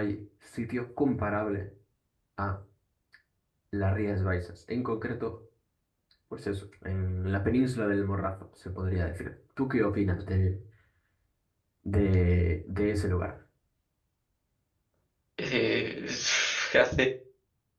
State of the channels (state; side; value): identical; both; correlation 1.00